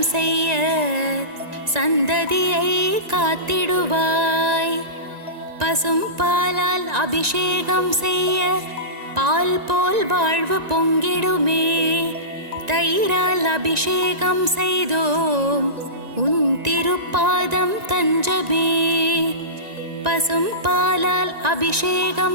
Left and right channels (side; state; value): left; late; 1.9 ms